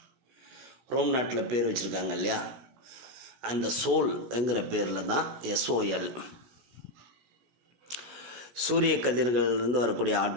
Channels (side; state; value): left; late; 16 ms